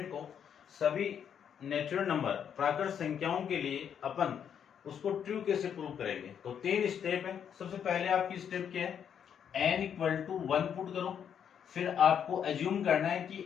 को सभी नेचुरल नंबर प्राकृत संख्याओं के लिए अपन उसको ट्रू कैसे प्रूव करेंगे। तो 3 स्टेप है। सबसे पहले आपकी स्टेप क्या है? n इक्वल टू 1 पुट करो, फिर आपको एज्यूम करना है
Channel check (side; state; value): right; quieter; 8.3 dB